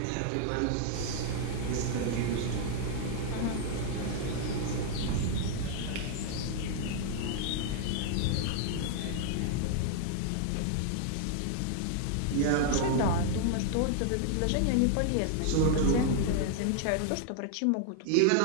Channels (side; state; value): both; different; correlation 0.00